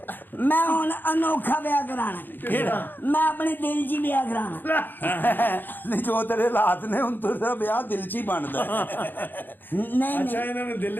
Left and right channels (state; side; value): late; right; 0.091 ms